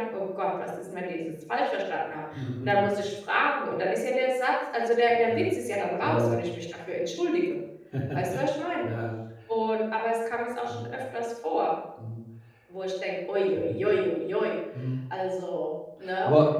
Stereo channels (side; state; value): both; identical; correlation 1.00